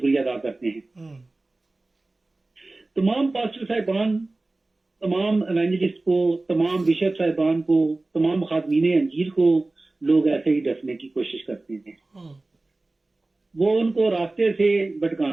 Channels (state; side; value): quieter; left; 3.1 dB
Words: अदा करते हैं। तमाम पास्टर साहिबान, तमाम एवेंजलिस्ट को, तमाम बिशप साहिबान को, तमाम खादमीन अंजीर को लोग ऐसे ही डसने की कोशिश करते हैं। वो उनको रास्ते से